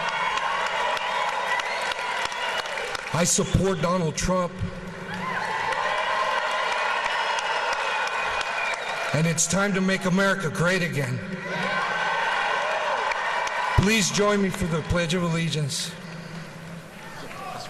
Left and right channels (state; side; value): identical; both; correlation 1.00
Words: I support Donald Trump. And it's time to make America great again. Please join me for the Pledge of Allegiance.